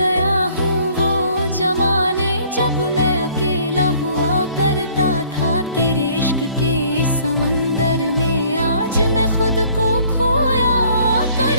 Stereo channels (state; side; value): inverted; both; correlation -0.58